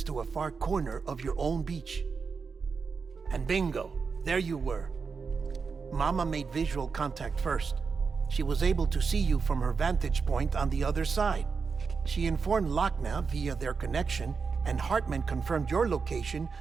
to a far corner of your own beach. And bingo, there you were. Mama made visual contact first. She was able to see you from her vantage point on the other side. She informed Lochna via their connection, and Hartman confirmed your location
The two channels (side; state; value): left; quieter; 5.2 dB